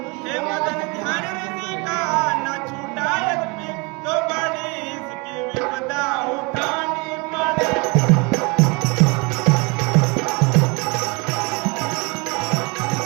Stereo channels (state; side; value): quieter; left; 29.1 dB